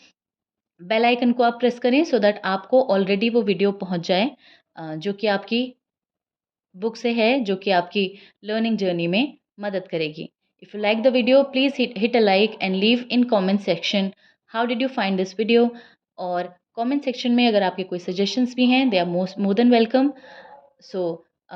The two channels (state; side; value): identical; both; correlation 1.00